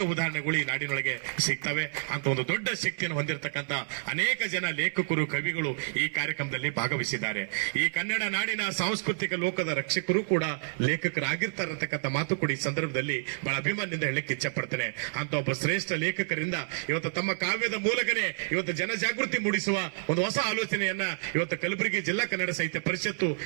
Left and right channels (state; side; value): silent; left; digital silence